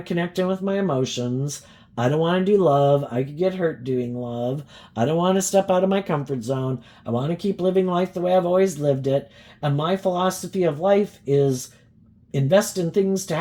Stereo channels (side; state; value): both; identical; correlation 1.00